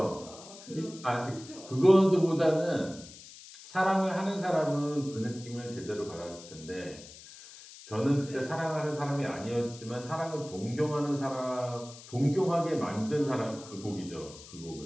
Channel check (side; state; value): left; noise; hiss, 17 dB below the sound